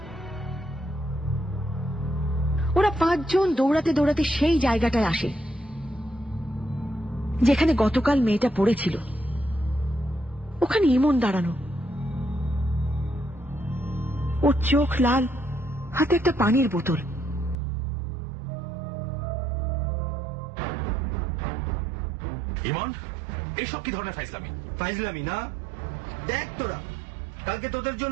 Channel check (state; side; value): drops out; left; at 17.6 s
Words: ওরা 5 জন দৌড়াতে দৌড়াতে সেই জায়গাটায় আসে যেখানে গতকাল মেয়েটা পড়েছিল। ওখানে ইমন দাঁড়ানো, ওর চোখ লাল, হাতে একটা পানির বোতল। ইমন, এসব কি ধরনের ফাইজলামি? ফাইজলামি না, দেখ তোরা কালকে তোদের